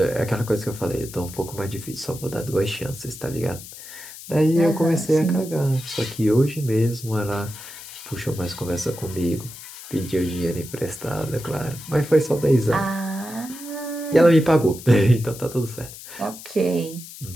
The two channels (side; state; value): left; noise; hiss, 14 dB below the sound